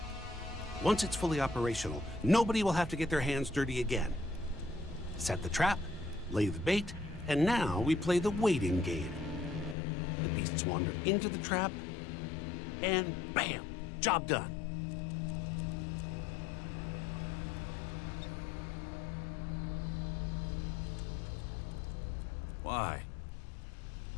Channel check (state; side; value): drops out; right; at 9.8 s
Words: Once it's fully operational, nobody will have to get their hands dirty again. Set the trap, lay the bait, and now we play the waiting game. The beasts wander into the trap, and bam! Job done. Why?